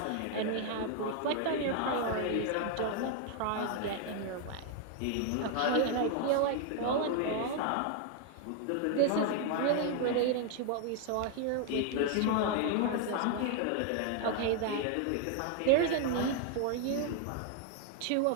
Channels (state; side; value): different; both; correlation 0.00